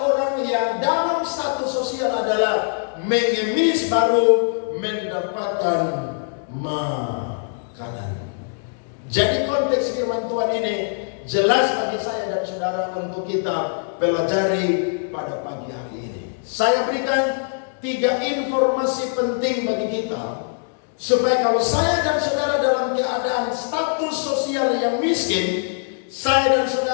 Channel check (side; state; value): right; silent; 64 dB below the other